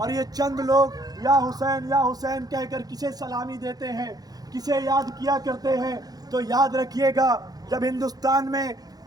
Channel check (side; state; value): left; late; 0.19 ms